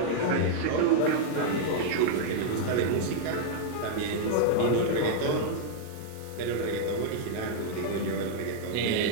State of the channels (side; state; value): both; different; correlation -0.01